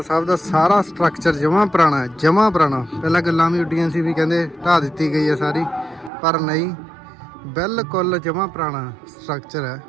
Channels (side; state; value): left; drops out; at 6.1 s